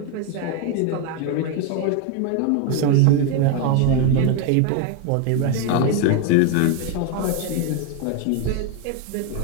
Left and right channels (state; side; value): different; both; correlation 0.01